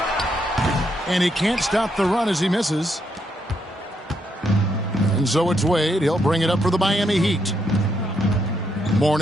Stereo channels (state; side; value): normal; both; correlation 0.77